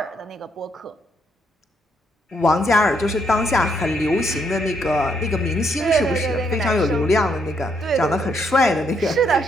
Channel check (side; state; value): both; normal; correlation 0.74